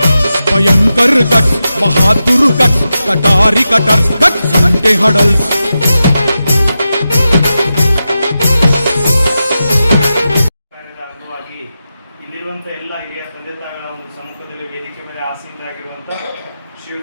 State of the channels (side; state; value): both; inverted; correlation -0.91